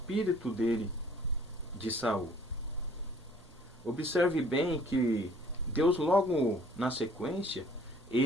dele de Saul. Observe bem que Deus logo na sequência,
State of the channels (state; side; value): normal; both; correlation 0.56